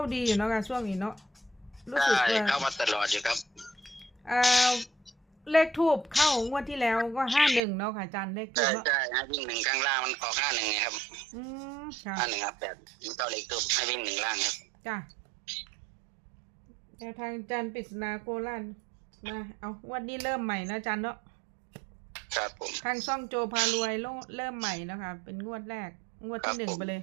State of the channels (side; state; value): left; drops out; at 7.6 s